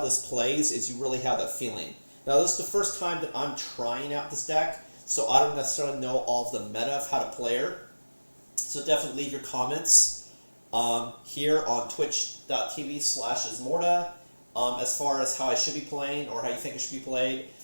this plays is you really have that feeling. Now, this is the first time that I'm trying out this deck, so I don't necessarily know all of the meta of how to play her. So definitely leave your comments here on twitch.tv/Ismortah as far as how I should be playing or how you think it should be played.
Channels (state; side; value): inverted; both; correlation -1.00